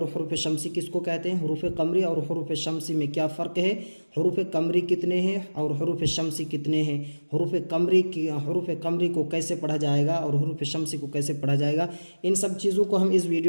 हरूफ शमसी किसको कहते हैं, हरूफ कमरी और हरूफ शमसी में क्या फ़र्क है, हरूफ कमरी कितने हैं और हरूफ शमसी कितने हैं, हरूफ कमरी को कैसे पढ़ा जाएगा और हरूफ शमसी को कैसे पढ़ा जाएगा, इन सब चीज़ों को हम इस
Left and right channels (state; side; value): inverted; both; correlation -1.00